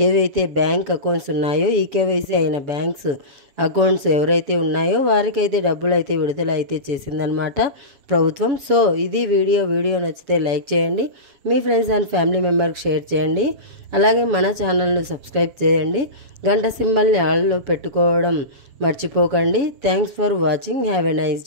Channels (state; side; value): late; left; 7.1 ms